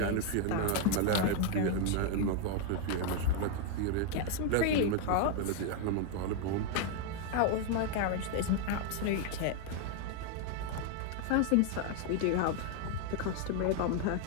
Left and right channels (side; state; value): both; different; correlation 0.00